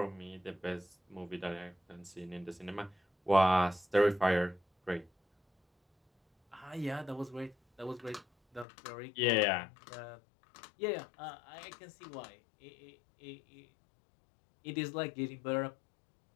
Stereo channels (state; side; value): drops out; right; at 8.7 s